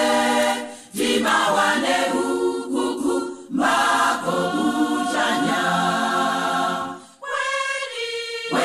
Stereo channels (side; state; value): both; identical; correlation 1.00